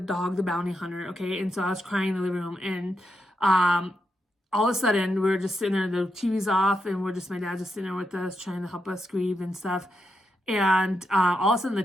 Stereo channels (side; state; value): both; normal; correlation 0.84